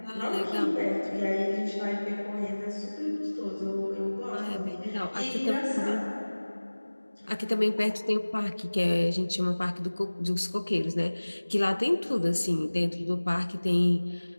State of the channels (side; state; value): both; inverted; correlation -1.00